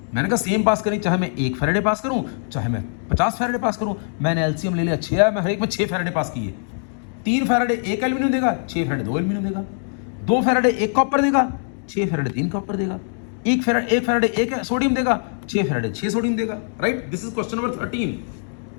मैंने कहा सेम पास करी, चाहे मैं 1 फैराडे पास करूं, चाहे मैं 50 फैराडे पास करूं। मैंने एलसीएम ले लिया 6 है, मैं हर एक में 6 फैराडे पास किए। 3 फैराडे 1 एल्यूमिनियम देगा, 6 फैराडे 2 एल्यूमिनियम देगा। 2 फैराडे 1 कॉपर देगा, 6 फैराडे 3 कॉपर देगा। 1 फैराडे 1 सोडियम देगा, 6 फैराडे 6 सोडियम देगा। Right, this is question number 13।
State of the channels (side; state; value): right; silent; digital silence